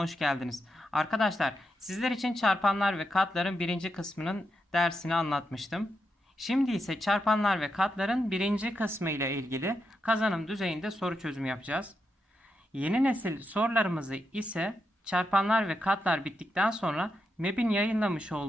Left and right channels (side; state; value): both; normal; correlation 0.85